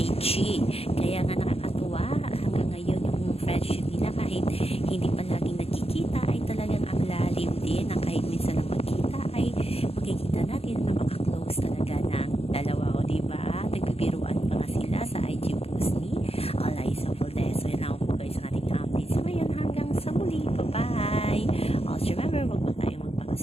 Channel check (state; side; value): late; right; 0.29 ms